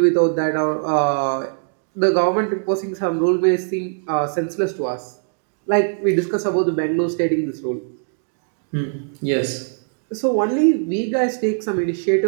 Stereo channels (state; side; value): silent; left; digital silence